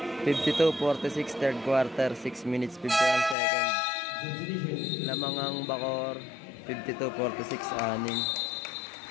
52-46 third quarter, 6 minutes 51 seconds. Lamang ang Bacor, 52-46 anin.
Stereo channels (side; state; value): right; drops out; at 3.4 s